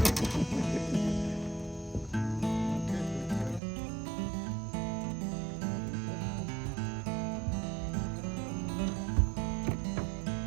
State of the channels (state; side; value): drops out; left; at 3.6 s